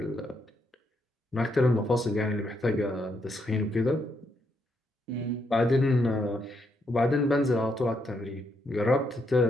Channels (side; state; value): both; normal; correlation 0.77